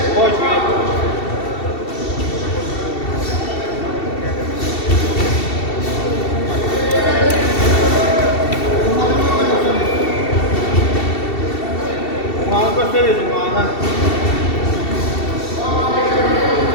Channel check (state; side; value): late; right; 2.7 ms